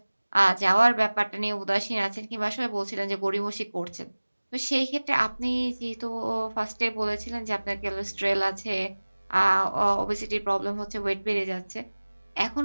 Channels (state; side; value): inverted; both; correlation -1.00